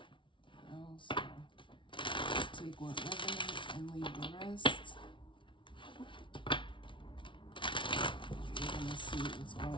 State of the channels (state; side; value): late; right; 0.24 ms